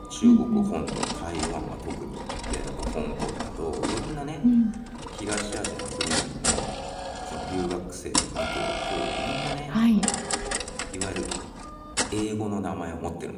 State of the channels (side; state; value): both; identical; correlation 1.00